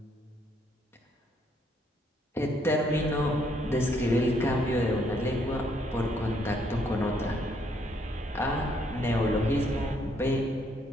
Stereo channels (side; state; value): both; normal; correlation 0.70